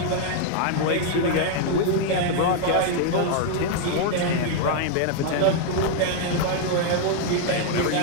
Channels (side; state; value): both; different; correlation 0.00